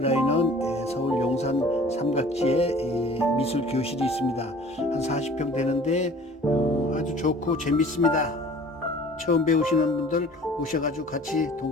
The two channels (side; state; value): both; normal; correlation 0.48